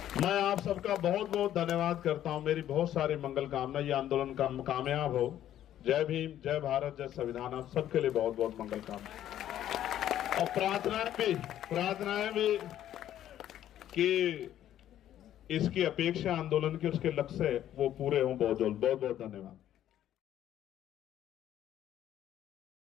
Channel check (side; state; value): right; quieter; 11.7 dB